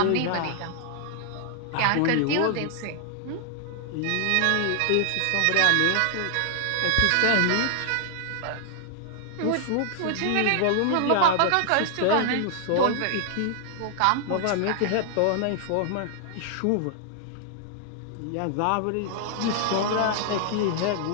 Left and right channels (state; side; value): different; both; correlation 0.00